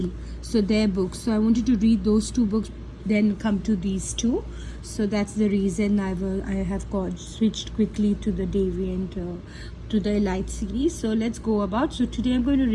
So their books. So I wanted to read those 2 books, then come to these 2. So that's the reason I have switched quickly to the Deviant to the Elite series. So let's go about. So today I'm going to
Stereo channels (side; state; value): both; identical; correlation 1.00